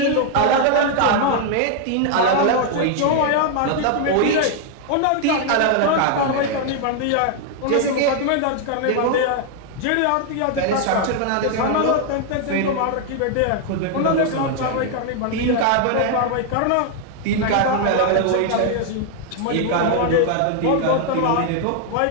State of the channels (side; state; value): both; different; correlation 0.00